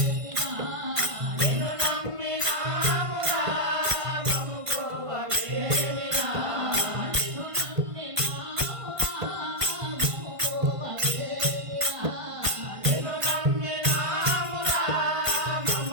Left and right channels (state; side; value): late; left; 1.5 ms